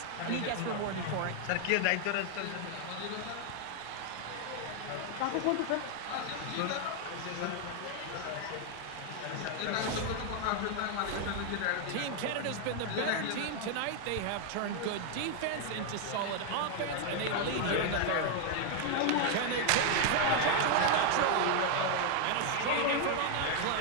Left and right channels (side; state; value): both; different; correlation 0.00